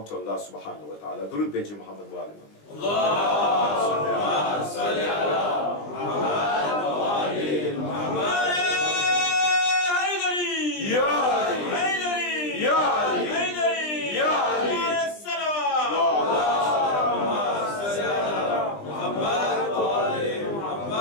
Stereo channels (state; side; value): late; right; 20 ms